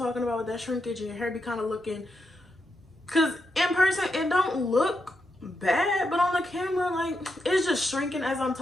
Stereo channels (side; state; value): both; normal; correlation 0.84